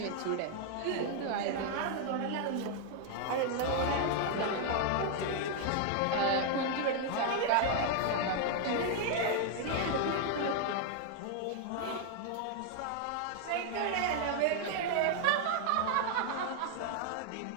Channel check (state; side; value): different; both; correlation 0.00